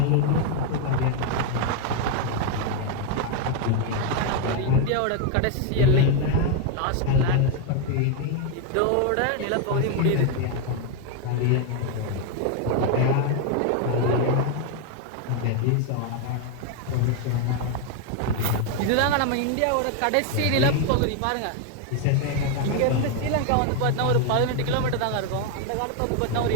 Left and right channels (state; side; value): different; both; correlation 0.01